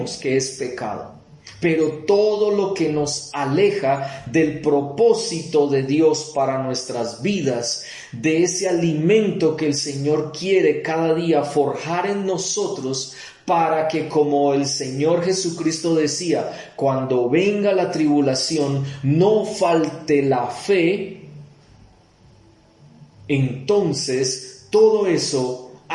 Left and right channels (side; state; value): both; identical; correlation 1.00